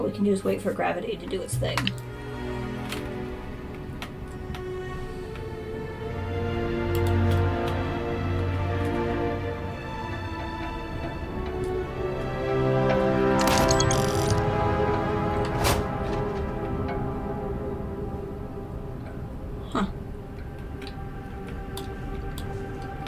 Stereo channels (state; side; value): identical; both; correlation 1.00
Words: we can do is wait for gravity to do its thing.